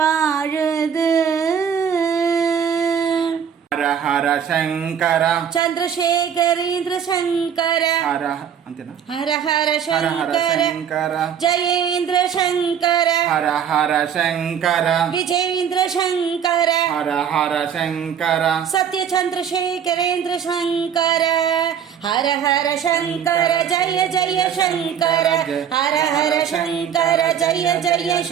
ஹர ஹர சங்கர சந்திரசேகரேந்திர சங்கர ஹர ಅಂತೆನಾ ஹர ஹர சங்கர ஜெயேந்திர சங்கர ஹர ஹர சங்கர விஜேந்திர சங்கர ஹர ஹர சங்கர சத்ய சந்திரசேகரேந்திர சங்கர ஹர ஹர சங்கர ஜய ஜய சங்கர ஹர ஹர சங்கர ஜய ஜய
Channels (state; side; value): quieter; left; 8.2 dB